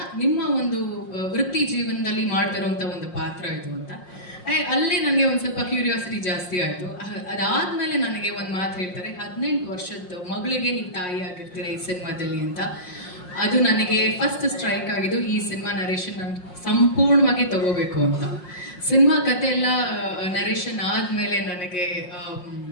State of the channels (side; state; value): right; late; 5.5 ms